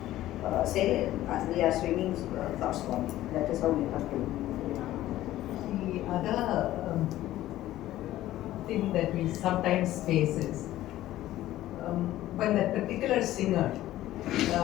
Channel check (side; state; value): right; quieter; 14.6 dB